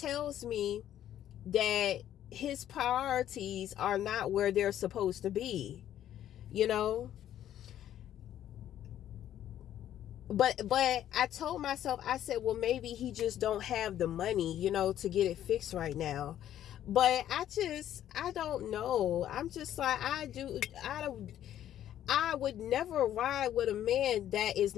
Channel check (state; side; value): quieter; right; 11.4 dB